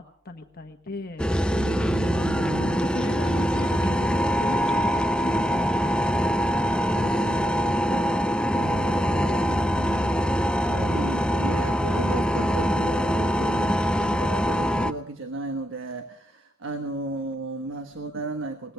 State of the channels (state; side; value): normal; both; correlation 0.84